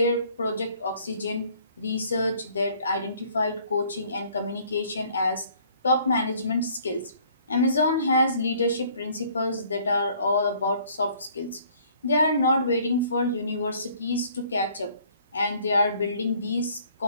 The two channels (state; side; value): inverted; both; correlation -0.58